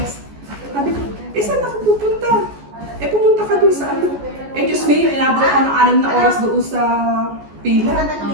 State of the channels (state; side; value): late; left; 14 ms